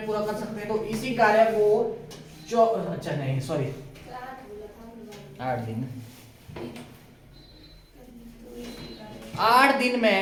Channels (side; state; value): both; identical; correlation 1.00